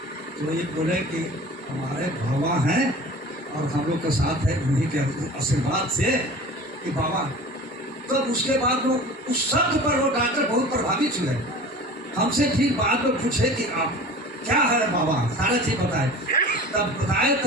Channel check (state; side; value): normal; both; correlation 0.39